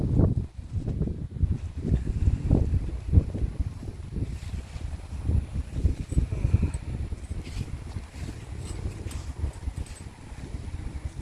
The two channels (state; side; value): identical; both; correlation 1.00